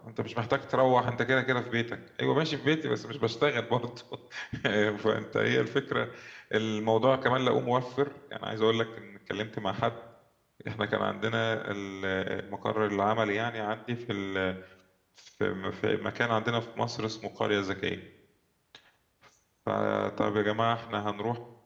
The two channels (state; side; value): identical; both; correlation 1.00